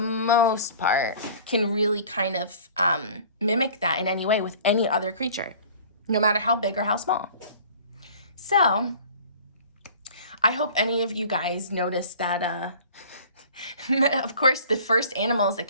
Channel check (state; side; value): inverted; both; correlation -0.47